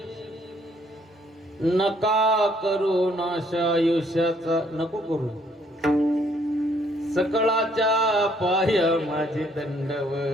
नका करू नाश आयुष्याचा नको करू सकळाच्या पाय माझे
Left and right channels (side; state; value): both; normal; correlation 0.66